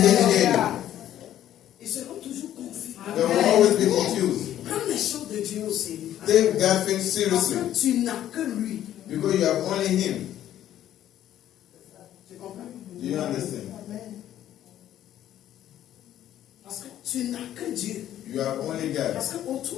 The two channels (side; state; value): right; quieter; 11.9 dB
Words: care of you. Ils seront toujours confus. They will always be confused. Prends les choses de Dieu au sérieux. Take God things Parce seriously que tu n'as que lui. because you have only Him. Tu comprends? Do you understand? Parce que tu n'as que Dieu. You have only God. Parce